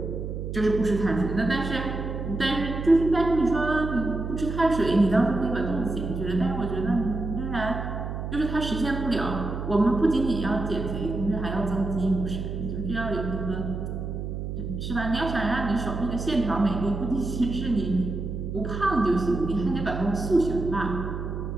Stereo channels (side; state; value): right; noise; hum, 5 dB below the sound